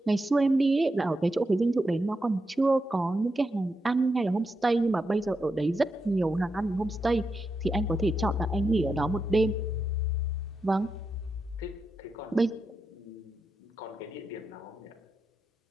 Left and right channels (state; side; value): normal; both; correlation 0.86